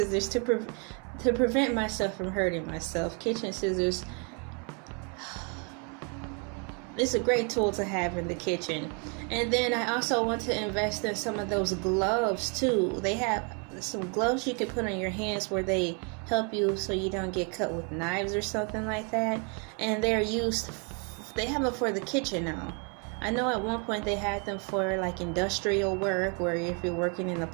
to prevent myself from hurting myself. Kitchen scissors, it's a great tool to have in the kitchen. And then I also want to invest in some of those gloves too. They have some gloves you can put on your hands where they help you so you don't get cut with knives or something like that. And they have them for the kitchen now. I know at one point they had them for like industrial work, where if you're working in a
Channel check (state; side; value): quieter; left; 36.2 dB